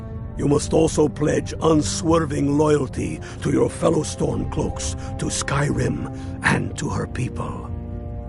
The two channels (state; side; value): identical; both; correlation 1.00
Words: You must also pledge unswerving loyalty to your fellow Stormcloaks, to Skyrim, and to her people.